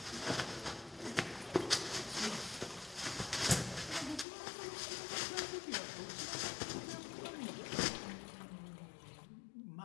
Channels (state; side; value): drops out; right; at 4.2 s